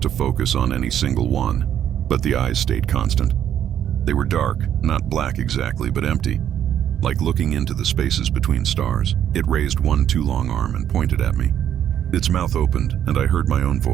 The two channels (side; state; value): left; quieter; 10.1 dB